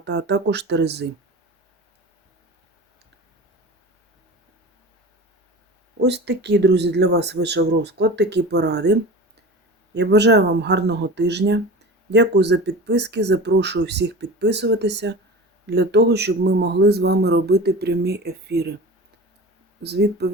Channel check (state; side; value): normal; both; correlation 0.33